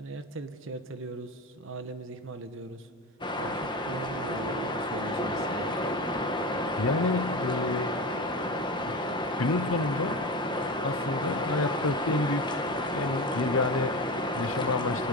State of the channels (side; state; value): both; normal; correlation 0.24